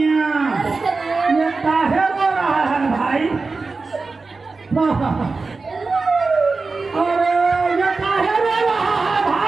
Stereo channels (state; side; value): quieter; left; 4.0 dB